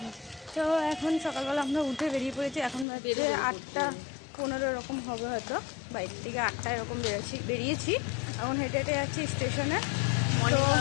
তো এখন সকালবেলা আমরা উঠে বেরিয়ে পড়েছি। এখন বাজে 8:15 এরকম হবে হয়তো। বাইরে থেকে 8টা এরকম বেরিয়েছি। এখন হেঁটে হেঁটে যাচ্ছি স্টেশনে। মর্নিং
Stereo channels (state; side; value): drops out; right; at 2.9 s